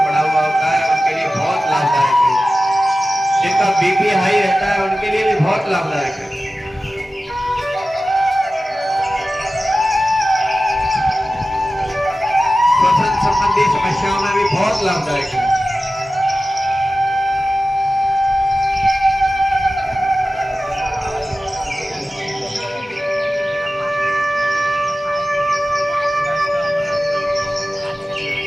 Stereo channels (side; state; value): both; normal; correlation 0.95